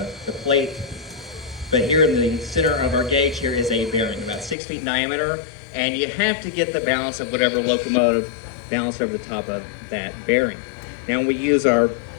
the plate. But here in the center of our gauge here is a bearing, about 6 feet in diameter, and you have to get the balance of whatever locomotive balanced over the top of that bearing. Now when we use our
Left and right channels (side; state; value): right; drops out; at 4.5 s